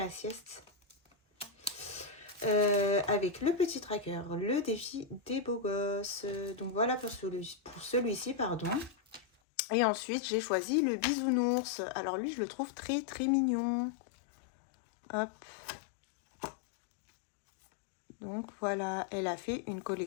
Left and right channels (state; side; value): drops out; right; at 9.2 s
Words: sieste. Avec le petit tracker, le défi des beaux gosses. Donc voilà pour celui-ci, pardon. Et ensuite, j'ai choisi le bisounours. Alors lui, je le trouve très très mignon. Hop. Donc voilà, elle a fait une